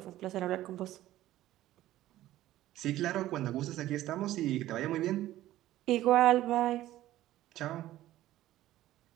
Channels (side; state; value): left; quieter; 14.6 dB